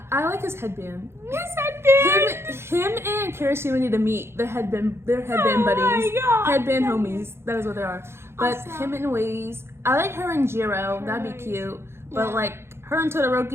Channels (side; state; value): left; late; 0.12 ms